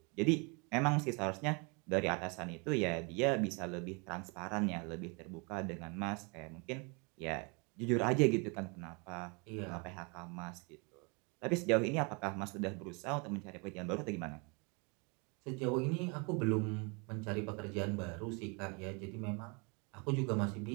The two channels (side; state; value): left; quieter; 31.8 dB